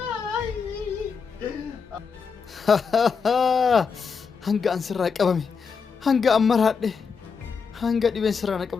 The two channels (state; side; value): quieter; right; 5.7 dB